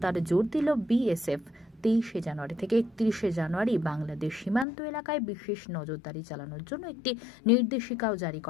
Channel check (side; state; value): right; drops out; at 4.7 s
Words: জোর দিল বিএসএফ। 23 জানুয়ারি থেকে 31 জানুয়ারি বাংলাদেশ সীমান্ত এলাকায় বিশেষ নজরদারি চালানোর জন্য একটি নির্দেশিকাও জারি